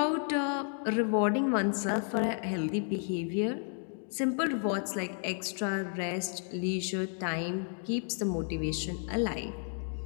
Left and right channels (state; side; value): silent; right; 56 dB below the other